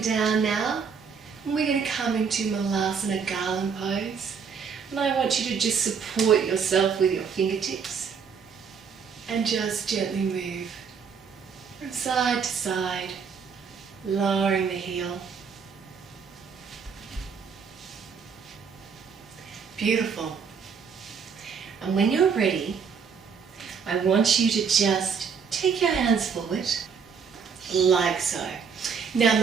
now. And we're going to come into Malasana Garland pose. And I want you to just support yourself with your fingertips. And just gently move from side to side, lowering the heel. Beautiful. And when you're ready, I want you to just take your hands forward, like so. Now,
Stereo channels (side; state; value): left; quieter; 6.1 dB